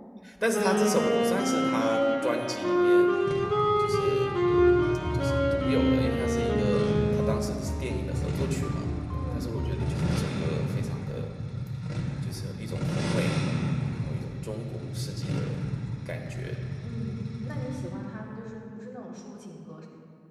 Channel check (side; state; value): both; identical; correlation 1.00